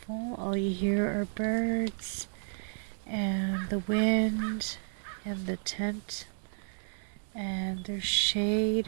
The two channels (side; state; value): left; silent; digital silence